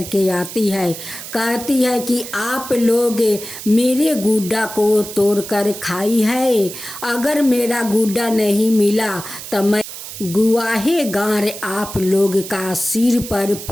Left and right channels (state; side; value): noise; right; hiss, 11 dB below the sound